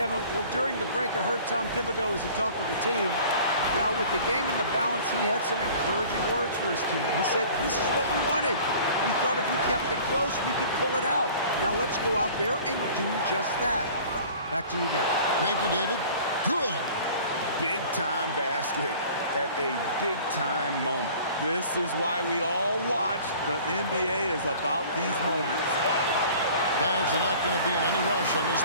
Well, during the break, I heard Tom Thibodeau as he talked with the team. Now, with the game in the balance, he had some encouraging words for his team. He said, this is what we wanted. We thought if we kept it close, we could pull it out. Now let's go out there and do just that. Back to you guys. Thank you, David. Good. Big-time basket at a big-time moment. This is why we all watch. The NBA is about these moments. Guys are not going to be in any rush on this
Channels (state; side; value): inverted; both; correlation -0.46